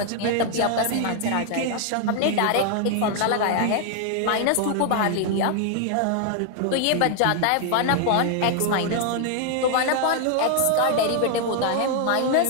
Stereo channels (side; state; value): both; different; correlation 0.00